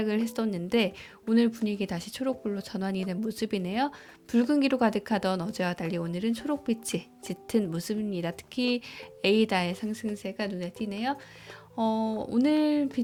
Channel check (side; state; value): both; identical; correlation 1.00